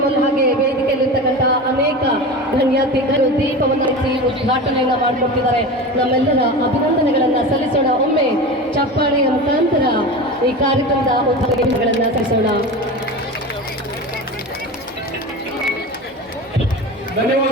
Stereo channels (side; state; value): both; normal; correlation 0.28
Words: ಹಾಗೆ ವೇದಿಕೆಯಲ್ಲಿರ್ತಕ್ಕಂಥ ಅನೇಕ ಗಣ್ಯಾತಿಥಿಗಳು ದೀಪವನ್ನು ಹಚ್ಚಿ ಉದ್ಘಾಟನೆಯನ್ನ ಮಾಡಿಕೊಟ್ಟಿದ್ದಾರೆ. ನಮ್ಮೆಲ್ಲರ ಅಭಿನಂದನೆಗಳನ್ನ ಸಲ್ಲಿಸೋಣ. ಒಮ್ಮೆ ಚಪ್ಪಾಳೆಯ ಮುಖಾಂತರ ಈ ಕಾರ್ಯಕ್ರಮದ ಉದ್ಘಾಟನೆಗಳನ್ನ ಸಲ್ಲಿಸೋಣ.